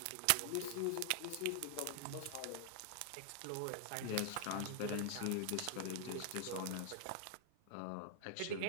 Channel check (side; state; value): both; different; correlation 0.00